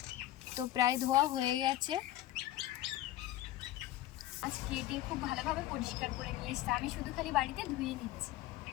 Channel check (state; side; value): quieter; right; 14.8 dB